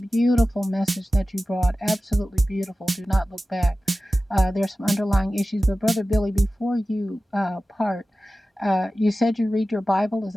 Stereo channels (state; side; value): normal; both; correlation 0.95